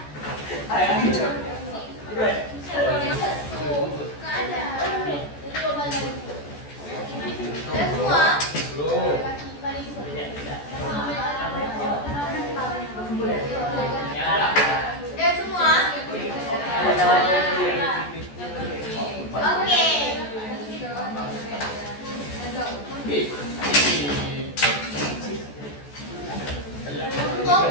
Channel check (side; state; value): right; late; 14 ms